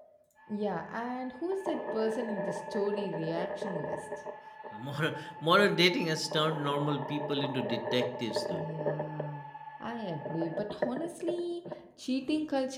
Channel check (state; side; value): identical; both; correlation 1.00